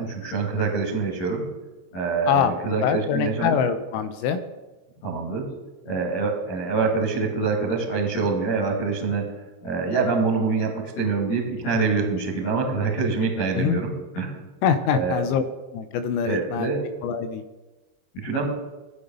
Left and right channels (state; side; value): late; right; 23 ms